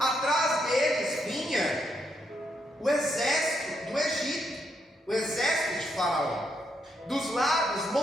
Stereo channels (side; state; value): both; normal; correlation 0.78